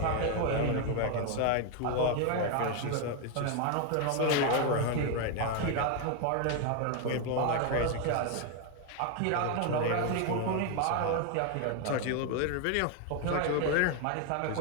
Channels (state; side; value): different; both; correlation 0.01